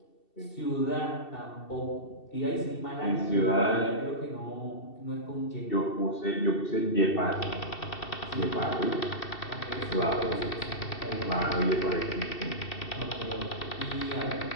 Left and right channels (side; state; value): right; late; 2.7 ms